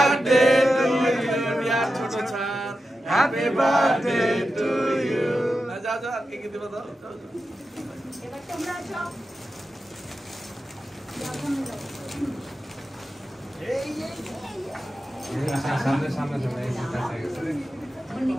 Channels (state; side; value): normal; both; correlation 0.91